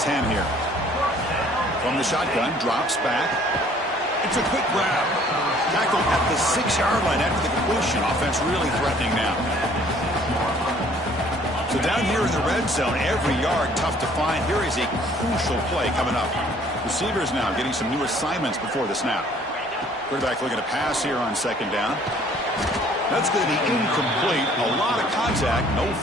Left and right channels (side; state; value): both; normal; correlation 0.57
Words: here. From the shotgun, drops back. It's a quick grab. Tackled at the 6-yard line after the completion. Offense really threatening now. So down here in the red zone, every yard tough to find. Here is a crucial play coming up. Receivers now getting some new assignments before the snap. Quarterback looking to pass here on 2nd down. That's going to be incomplete. A lot of contact. No